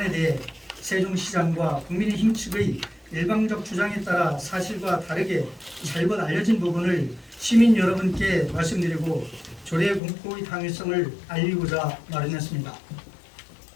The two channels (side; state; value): right; drops out; at 10.0 s